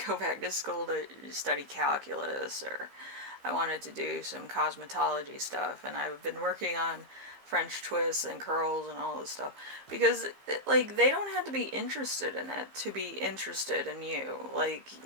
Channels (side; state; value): left; late; 15 ms